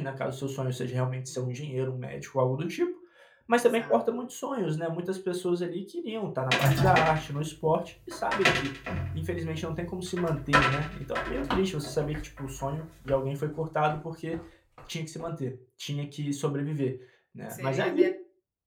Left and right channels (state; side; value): identical; both; correlation 1.00